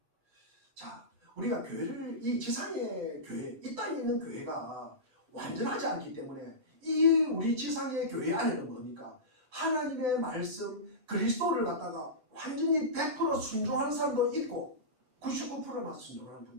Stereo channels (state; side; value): late; left; 7.7 ms